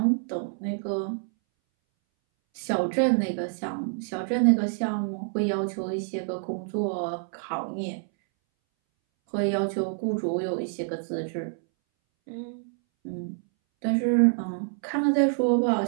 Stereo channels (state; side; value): silent; left; 60 dB below the other